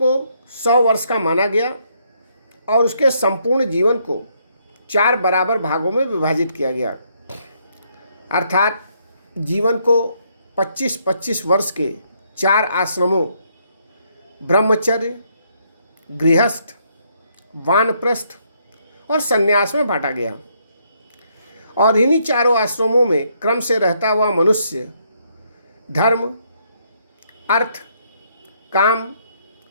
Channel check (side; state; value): both; inverted; correlation -0.72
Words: 100 वर्ष का माना गया और उसके संपूर्ण जीवन को 4 बराबर भागों में विभाजित किया गया, अर्थात जीवन को 25-25 वर्ष के 4 आश्रमों ब्रह्मचर्य, गृहस्थ, वानप्रस्थ और संन्यास में बांटा गया। और इन्हीं चारों आश्रमों में क्रम से रहता हुआ मनुष्य धर्म, अर्थ, काम